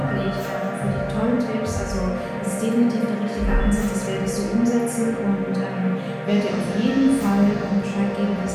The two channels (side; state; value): both; identical; correlation 1.00